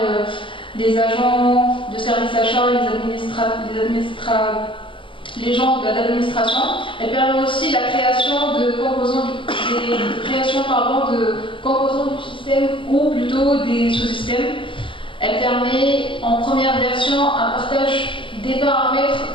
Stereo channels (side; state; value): right; late; 0.25 ms